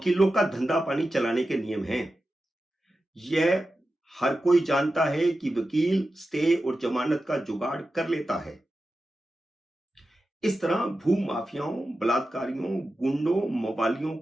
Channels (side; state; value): both; normal; correlation 0.92